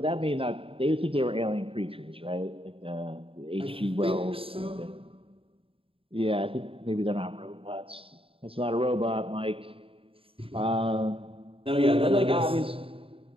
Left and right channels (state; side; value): late; left; 0.27 ms